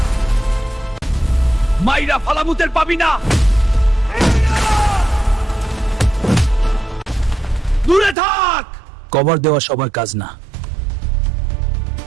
মাইরা ফালামুতের পাবি না। দূরে থাক। কভার দেওয়া সবার কাজ না।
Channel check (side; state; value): left; drops out; at 8.2 s